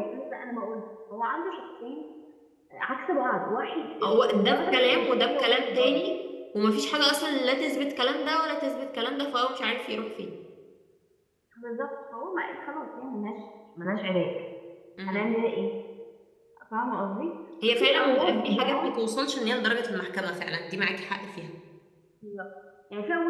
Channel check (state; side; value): identical; both; correlation 1.00